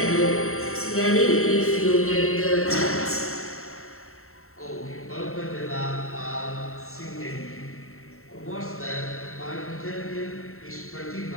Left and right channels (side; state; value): right; late; 0.63 ms